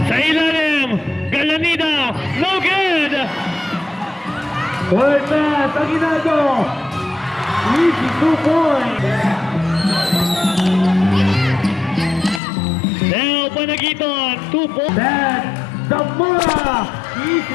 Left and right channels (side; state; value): right; drops out; at 12.4 s